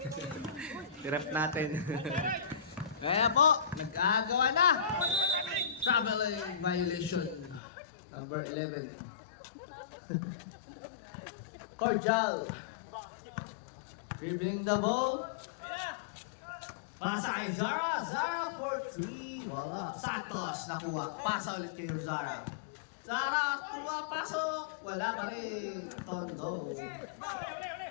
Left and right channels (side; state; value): right; drops out; at 7.6 s